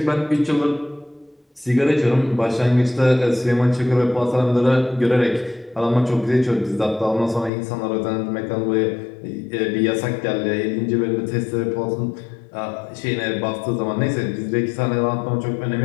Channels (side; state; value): right; drops out; at 7.5 s